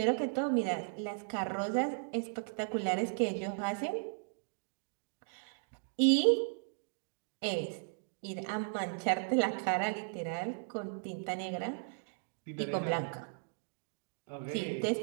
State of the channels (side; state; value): left; silent; digital silence